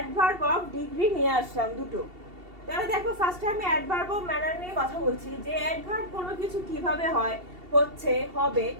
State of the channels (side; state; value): left; late; 2.7 ms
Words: অফ ডিগ্রি নিয়ে আসলাম দুটো। তাহলে দেখো, ফার্স্টে আমি অ্যাডভার্ব অফ ম্যানার নিয়ে কথা বলছি যে অ্যাডভার্ব কোনো কিছু কিভাবে হয়, হচ্ছে, হবে